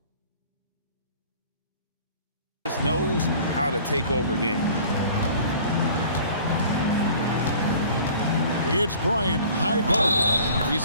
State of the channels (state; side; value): inverted; both; correlation -0.48